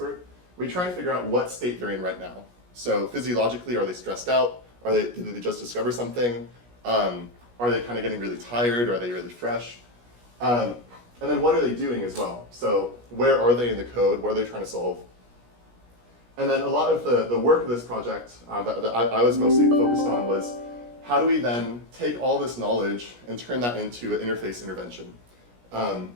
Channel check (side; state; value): left; late; 17 ms